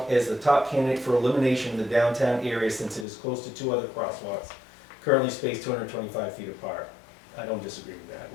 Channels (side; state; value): right; drops out; at 3.1 s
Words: as the top candidate for elimination in the downtown area since it is close to two other crosswalks, currently spaced 225 feet apart. I don't disagree with that.